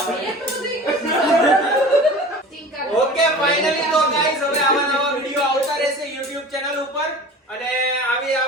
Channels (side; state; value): both; normal; correlation 0.39